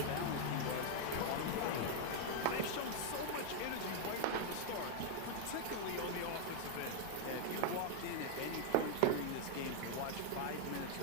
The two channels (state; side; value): different; both; correlation 0.00